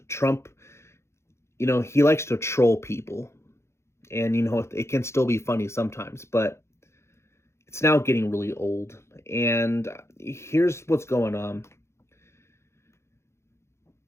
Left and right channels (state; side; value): late; right; 0.13 ms